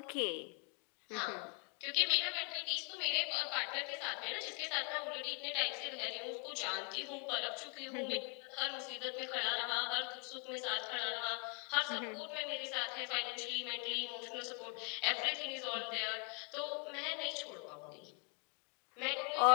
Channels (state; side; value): quieter; right; 35.3 dB